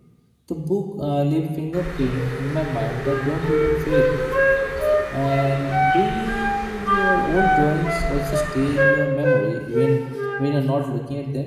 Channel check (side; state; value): both; identical; correlation 1.00